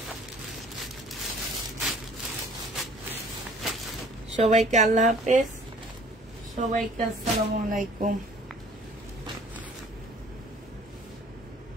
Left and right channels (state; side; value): normal; both; correlation 0.53